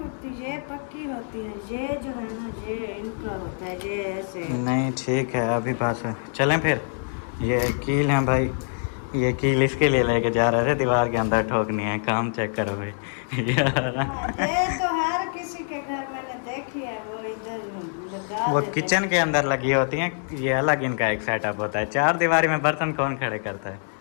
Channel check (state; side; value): silent; right; 62 dB below the other